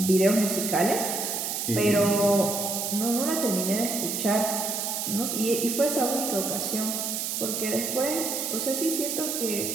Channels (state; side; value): noise; right; hiss, 2 dB below the sound